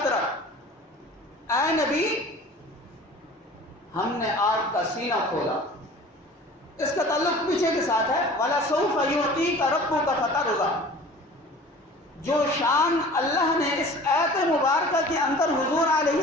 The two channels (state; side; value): normal; both; correlation 0.44